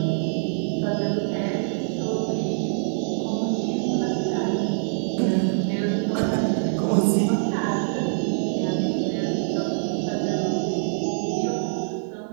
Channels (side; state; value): left; silent; digital silence